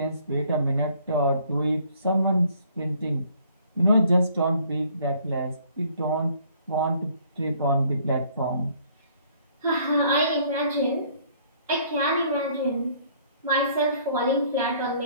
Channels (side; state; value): both; inverted; correlation -0.60